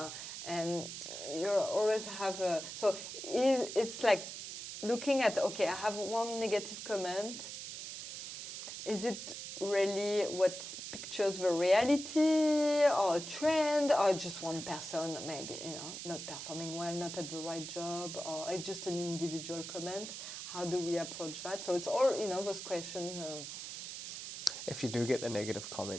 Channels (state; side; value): noise; right; hiss, 8 dB below the sound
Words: And you always have so it's like looking at, okay, I have one negative comment. Is it really what pictures the reality, or a trend, or just one person maybe not performing well, not at the right job, or it's just an individual comment? How do we approach that? So it's all those questions. If you do get the negative